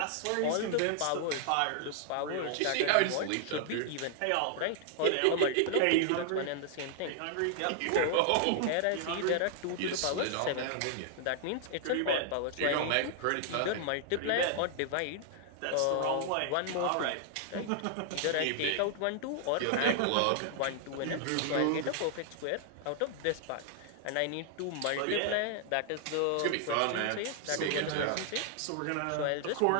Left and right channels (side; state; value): both; different; correlation 0.00